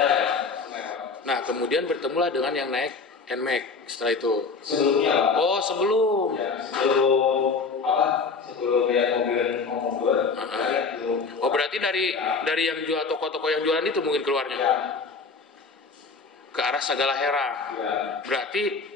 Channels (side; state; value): right; quieter; 4.6 dB